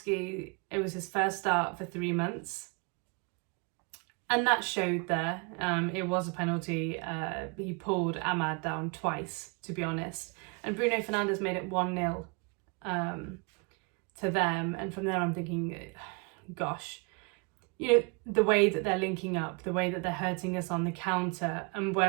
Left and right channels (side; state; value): left; quieter; 32.5 dB